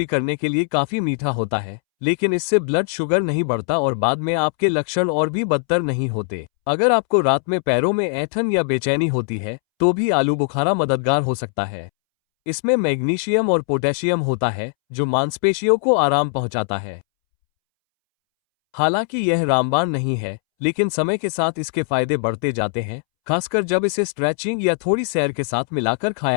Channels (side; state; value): right; silent; 65 dB below the other